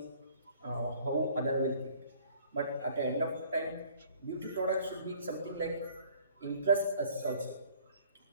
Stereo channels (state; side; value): inverted; both; correlation -0.55